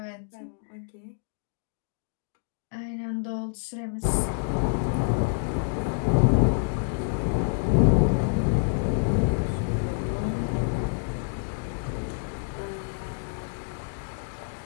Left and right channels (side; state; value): right; silent; digital silence